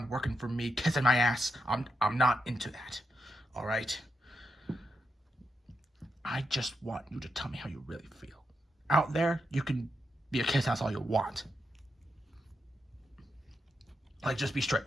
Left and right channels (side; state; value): both; normal; correlation 0.85